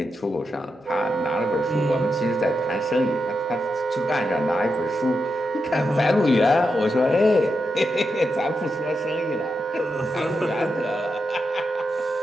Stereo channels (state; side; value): normal; both; correlation 0.86